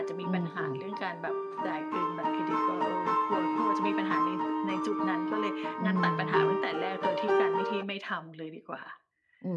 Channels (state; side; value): identical; both; correlation 1.00